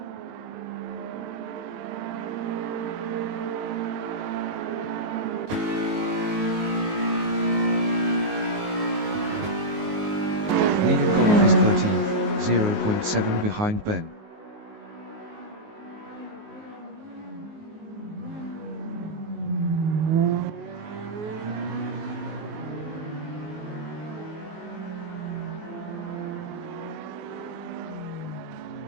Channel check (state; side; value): late; left; 19 ms